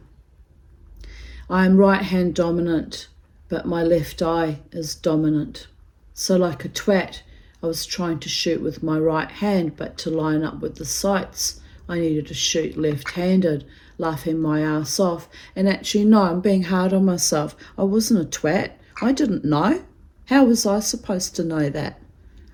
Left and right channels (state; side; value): identical; both; correlation 1.00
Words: I am right hand dominant, but my left eye is dominant. So like a twat, I was trying to shoot with my right hand, but to line up with the sights, I needed to shoot left-handed, laughing my ass off. And actually, no, I'm being hard on myself. I wasn't a twat. I didn't know. How was I supposed to know that?